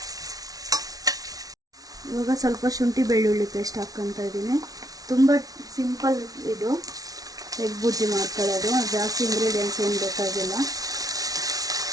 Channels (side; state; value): left; late; 0.18 ms